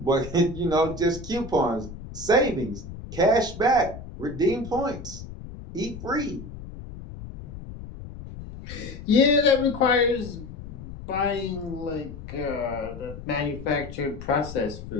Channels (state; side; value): noise; left; rumble, 12 dB below the sound